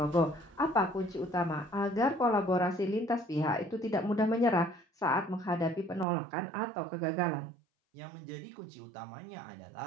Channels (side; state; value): left; drops out; at 6.1 s